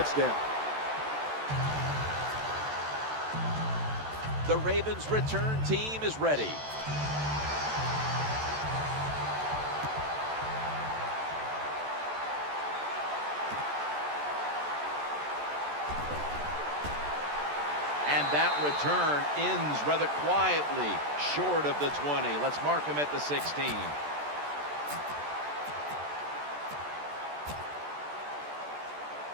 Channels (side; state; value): left; late; 14 ms